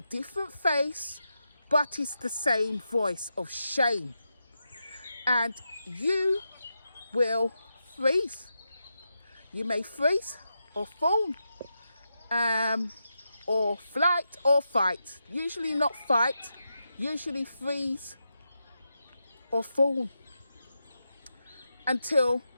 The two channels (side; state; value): both; inverted; correlation -0.87